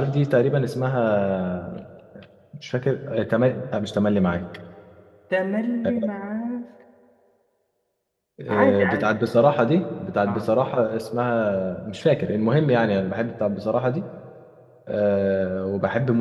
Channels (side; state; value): both; identical; correlation 1.00